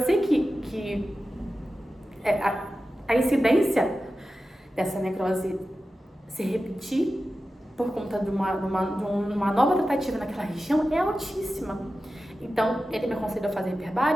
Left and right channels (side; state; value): both; normal; correlation 0.93